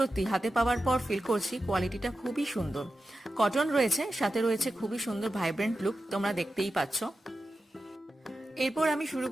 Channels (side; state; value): both; normal; correlation 0.92